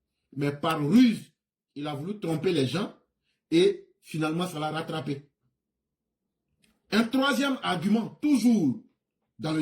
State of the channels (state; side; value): identical; both; correlation 1.00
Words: Mais par ruse, il a voulu tromper les gens et finalement, ça l'a rattrapé. Un troisième argument, toujours dans le